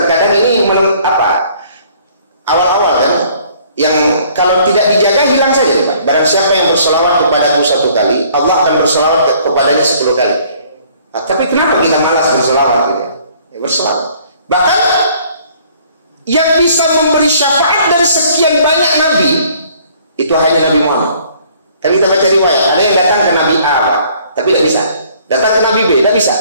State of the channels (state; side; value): inverted; both; correlation -0.58